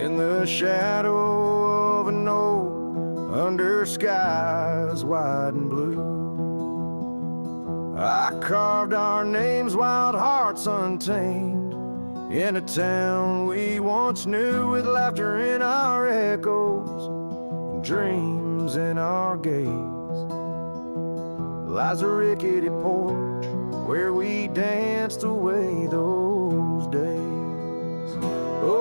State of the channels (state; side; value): inverted; both; correlation -1.00